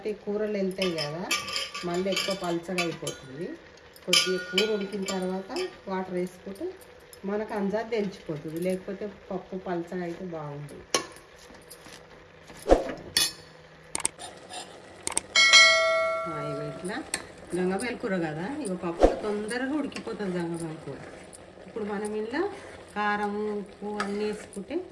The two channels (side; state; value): both; identical; correlation 1.00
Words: ఈ కూరలు వెళ్తాయి కదా, మళ్ళీ ఎక్కువ పల్చగా అయిపోతుంది. కొద్దిగా కూర ఉడికిన తర్వాత వాటర్ వేసుకుంటే మనకు అంజాది తెలిసిపోతుంది, లేకపోతే పప్పు పల్చగా అయితే బాగుంటుంది. ఇట్లా గంగమేల కూర కదా, ఇక పప్పు తొందరగా ఉడికిపోతుంది గంగమేల కూర. ఇప్పుడు మనం ఇలా కారం ఉప్పు అన్నీ వేసుకుంటే